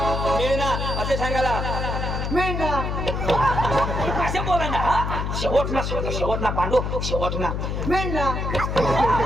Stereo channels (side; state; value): left; noise; hum, 2 dB below the sound